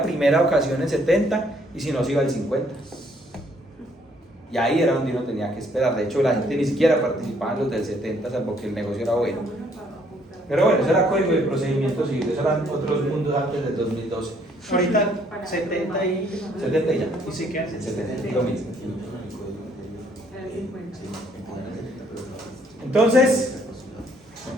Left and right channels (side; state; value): both; normal; correlation 0.66